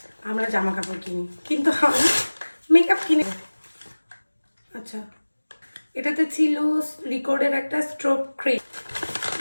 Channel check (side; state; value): both; inverted; correlation -1.00